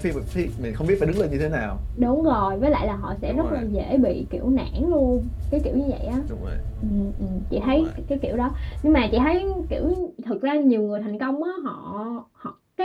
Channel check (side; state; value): both; identical; correlation 1.00